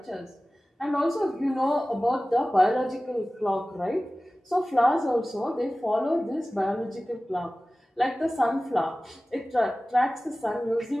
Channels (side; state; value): both; normal; correlation 0.97